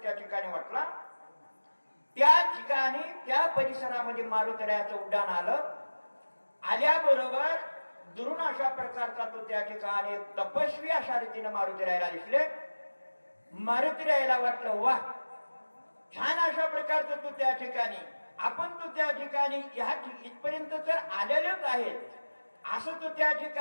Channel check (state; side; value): inverted; both; correlation -1.00